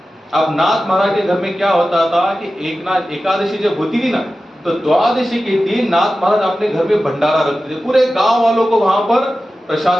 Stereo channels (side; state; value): both; normal; correlation 0.94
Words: अब नाथ महाराज के घर में क्या होता था कि एकादशी जब होती थी ना, तो द्वादशी के दिन नाथ महाराज अपने घर में भंडारा रखते थे, पूरे गांव वालों को वहां पर